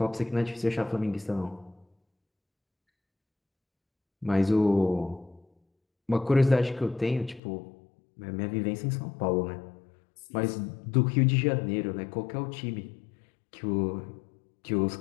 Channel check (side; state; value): right; drops out; at 7.4 s